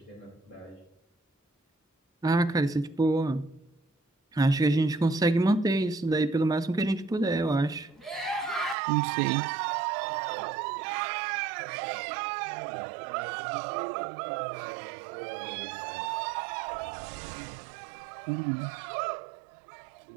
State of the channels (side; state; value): left; drops out; at 8.8 s